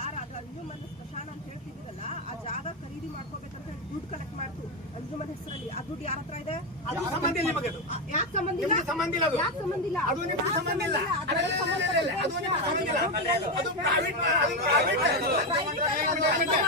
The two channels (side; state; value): both; normal; correlation 0.10